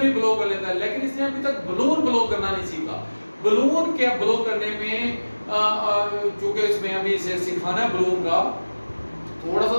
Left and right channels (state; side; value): inverted; both; correlation -1.00